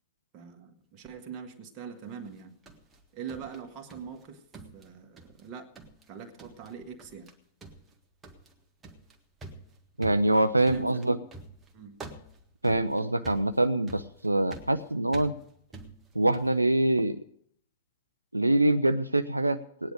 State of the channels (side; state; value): both; inverted; correlation -0.90